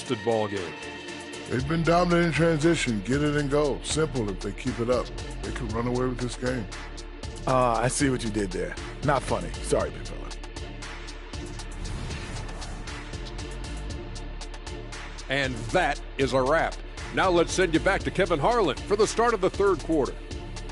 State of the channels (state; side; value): identical; both; correlation 1.00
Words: ball game. They've been dominant in transition. Get it and go. Simple if they keep it up. They can run away with this game. I see what you did there. Not funny. Sorry, big fella. And that is a wrap. Now let's send you back to Kevin Harlan for the start of the third quarter.